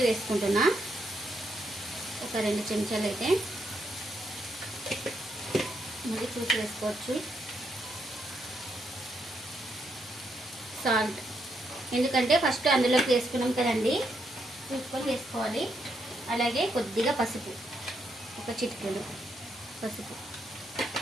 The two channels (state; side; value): normal; both; correlation 0.78